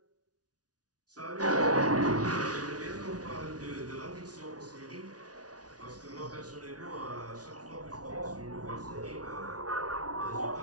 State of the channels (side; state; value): left; late; 0.68 ms